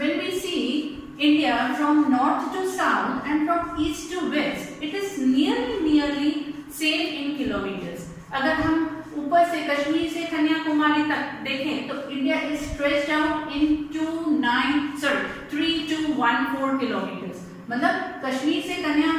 we see India from north to south and from east to west, it is nearly same in kilometers. अगर हम ऊपर से कश्मीर से कन्याकुमारी तक देखें तो India is stretched out into 3214 kilometers. मतलब कश्मीर से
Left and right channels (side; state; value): both; identical; correlation 1.00